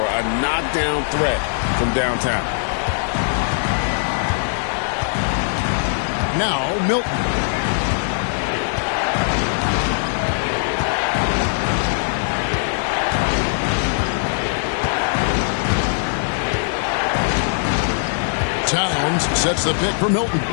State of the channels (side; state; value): right; silent; digital silence